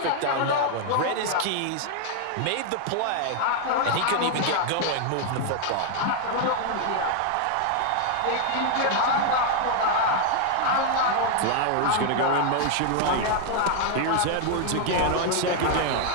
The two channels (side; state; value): both; different; correlation 0.00